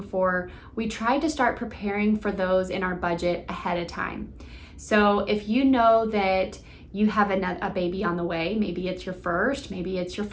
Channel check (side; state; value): both; identical; correlation 1.00